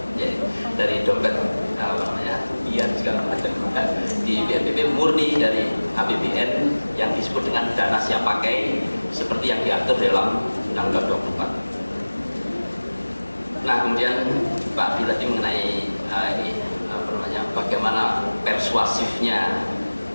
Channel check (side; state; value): both; inverted; correlation -1.00